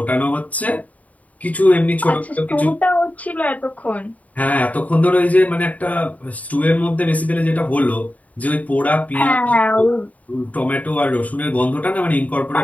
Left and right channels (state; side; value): late; right; 0.071 ms